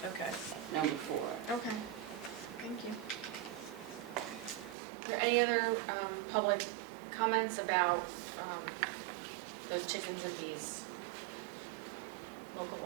Okay. number 4. okay, thank you. Are there any other public comments about the chickens and bees local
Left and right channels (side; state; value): left; drops out; at 4.8 s